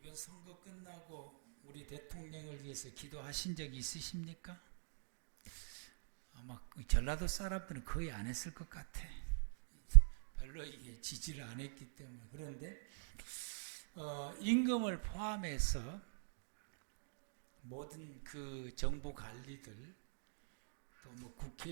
선거 끝나고 우리 대통령을 위해서 기도하신 적이 있으십니까? 아마 전라도 사람들은 거의 안 했을 것 같아. 별로 이게 지지를 안 했기 때문에. 그런데 임금을 포함해서 모든 그 정부 관리들, 또 뭐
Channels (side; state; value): left; silent; digital silence